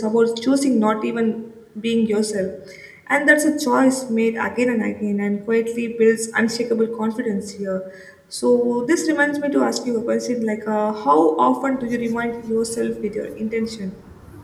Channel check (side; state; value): both; identical; correlation 1.00